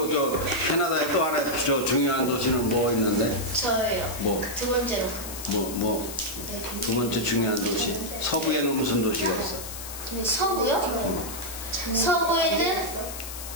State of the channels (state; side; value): noise; left; hiss, 10 dB below the sound